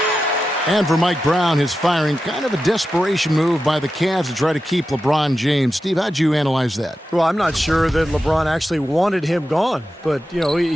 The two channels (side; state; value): both; normal; correlation 0.91